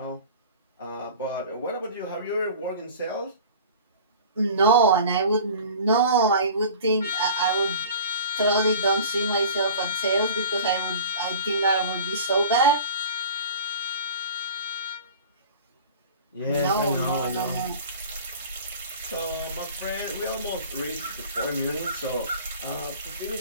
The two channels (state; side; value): inverted; both; correlation -0.41